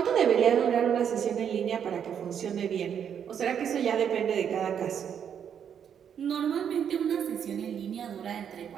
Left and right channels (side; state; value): left; quieter; 8.3 dB